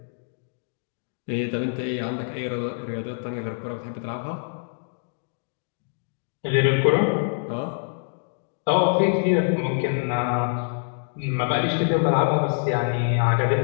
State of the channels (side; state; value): right; silent; digital silence